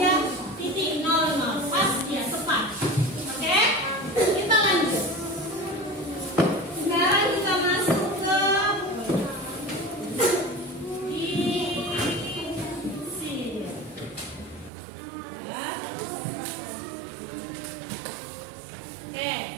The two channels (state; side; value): drops out; left; at 14.7 s